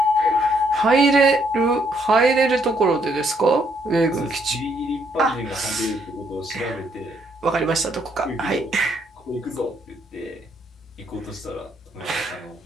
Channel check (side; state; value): both; normal; correlation 0.71